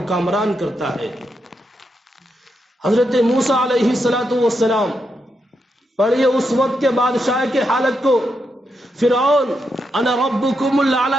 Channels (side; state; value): both; normal; correlation 0.83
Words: کامران کرتا ہے۔ حضرت موسیٰ علیہ السلام پڑھیے اس وقت کے بادشاہ کے حالت کو۔ فرعون انا ربکم